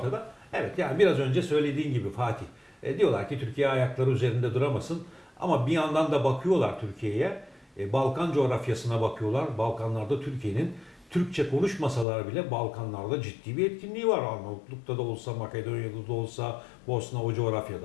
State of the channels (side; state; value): right; drops out; at 12.1 s